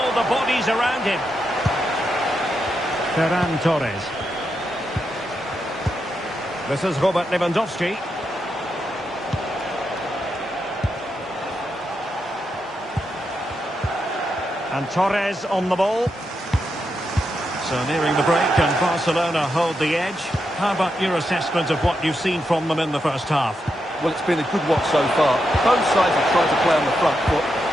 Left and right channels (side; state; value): both; normal; correlation 0.84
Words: the bodies around him. Ferran Torres. This is Robert Lewandowski. And Torres on the ball. So nearing the break, and Barcelona hold the edge. How about your assessment of what you've seen from them in the first half? Well, it's been a good watch so far. Both sides have tried to play on the front foot,